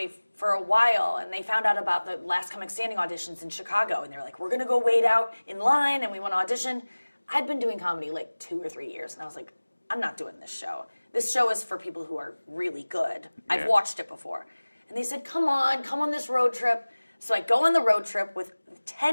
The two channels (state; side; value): inverted; both; correlation -1.00